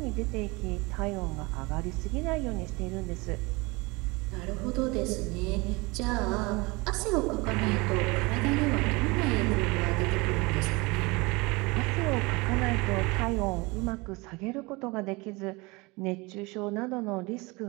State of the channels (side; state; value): left; quieter; 25.1 dB